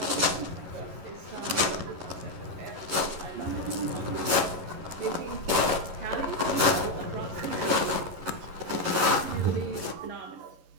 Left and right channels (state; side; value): late; left; 11 ms